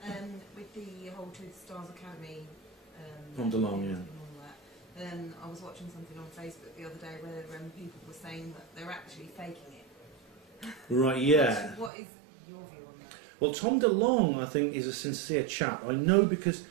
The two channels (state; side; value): drops out; left; at 11.9 s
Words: With the whole To the Stars Academy From DeLong, yeah. and all that, I was watching something on Facebook the other day where people were saying that they're actually faking it. Right, yeah. What is your view on that? Well, Tom DeLong, I think, is a sincere chap. I know because